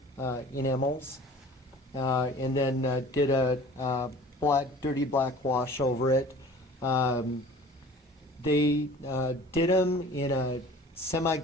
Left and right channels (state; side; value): normal; both; correlation 0.45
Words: enamels, and then did a dirty black wash over it. They did them in a